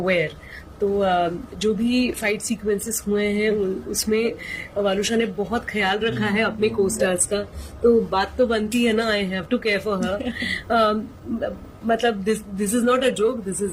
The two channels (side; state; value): both; identical; correlation 1.00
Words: aware. तो जो भी फाइट सीक्वेंसेस हुए हैं उसमें वालुषा ने बहुत ख्याल रखा है अपने कोस्टार्स का। तो बात तो बनती है ना, I have to care for her. मतलब this is not a joke, this